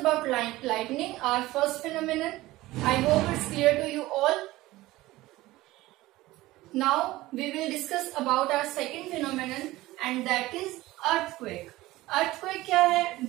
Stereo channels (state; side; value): quieter; left; 18.0 dB